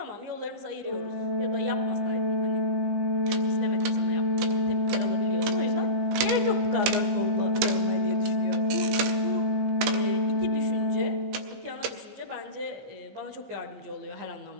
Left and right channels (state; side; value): late; left; 15 ms